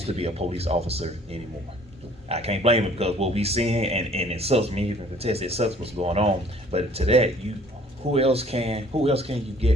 to be a police officer anymore. I can't blame it, because what we seeing and it sucks me even to test, it sucks what's going on. But to that, who else can you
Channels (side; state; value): both; normal; correlation 0.55